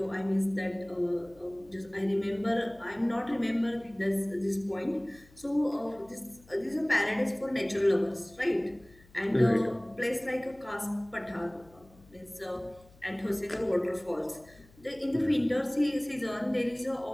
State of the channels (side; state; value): left; noise; hum, 26 dB below the sound